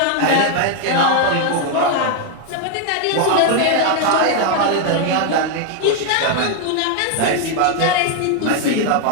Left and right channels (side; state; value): both; different; correlation 0.00